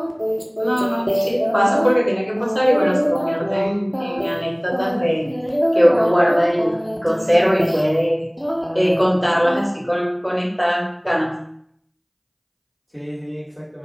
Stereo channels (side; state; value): both; identical; correlation 1.00